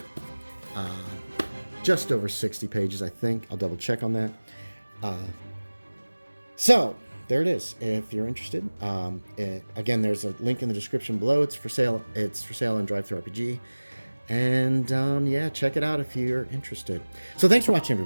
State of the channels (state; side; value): inverted; both; correlation -1.00